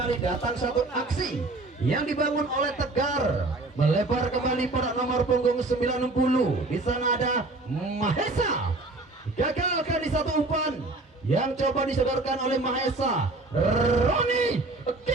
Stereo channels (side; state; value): left; quieter; 3.1 dB